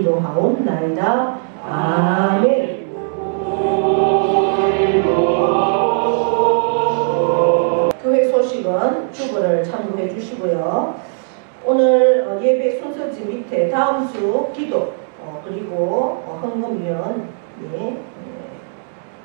아멘. 교회 소식은 주보를 참고해 주시고요. 오늘 예배 순서지 밑에 다음 주 기도 그리고 헌금위원이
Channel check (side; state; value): left; silent; 67 dB below the other